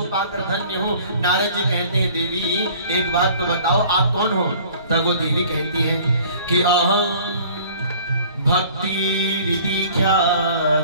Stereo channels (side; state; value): both; inverted; correlation -0.51